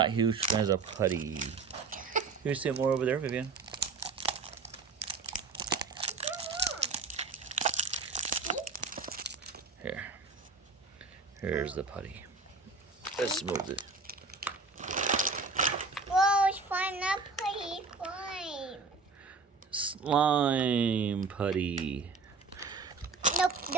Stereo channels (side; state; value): left; quieter; 4.4 dB